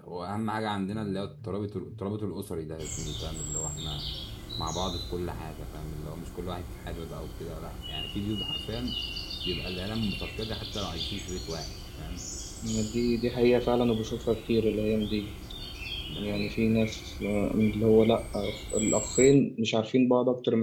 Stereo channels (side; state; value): both; identical; correlation 1.00